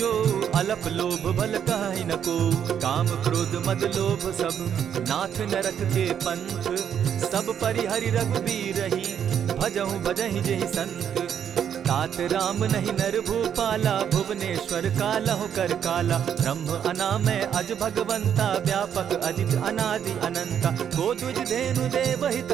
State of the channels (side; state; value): left; quieter; 8.8 dB